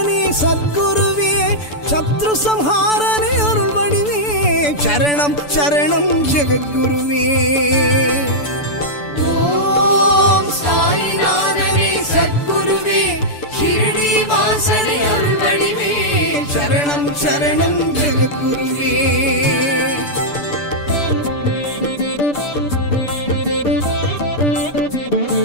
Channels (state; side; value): late; right; 6.9 ms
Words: சத்குருவே சத்ரு சம்ஹாரனே அருள் வடிவே சரணம் சரணம் ஜெகத்குருவே. ஓம் சாயிநாதனே சத்குருவே ஷிரடி வாசனே அருள்வடிவே சரணம் சரணம் ஜெகத்குருவே.